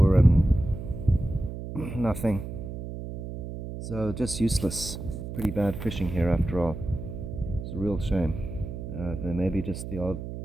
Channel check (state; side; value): noise; right; hum, 8 dB below the sound